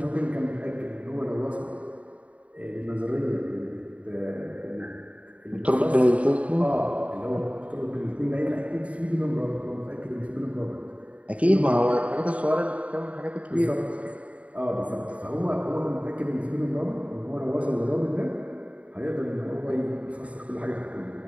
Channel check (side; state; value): left; late; 0.066 ms